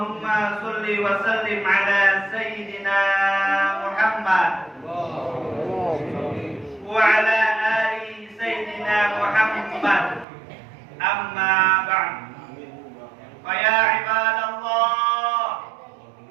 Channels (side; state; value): left; drops out; at 10.2 s